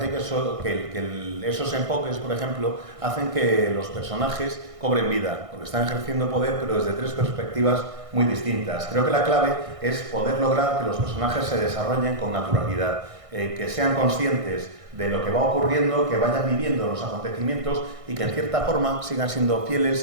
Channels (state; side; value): late; left; 1.6 ms